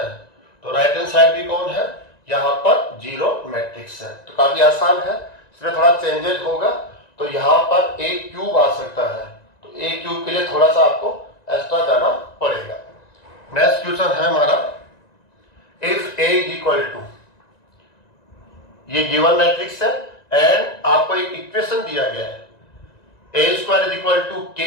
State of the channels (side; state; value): right; late; 1.9 ms